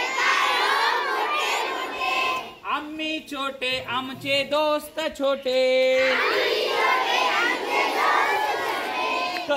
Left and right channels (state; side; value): identical; both; correlation 1.00